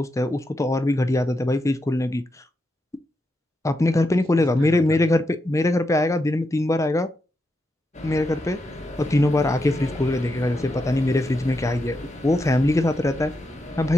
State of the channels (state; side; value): normal; both; correlation 0.84